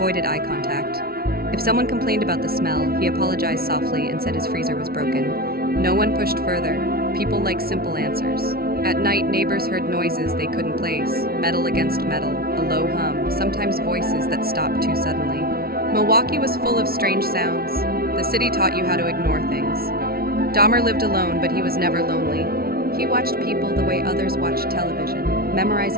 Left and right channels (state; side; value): late; left; 0.44 ms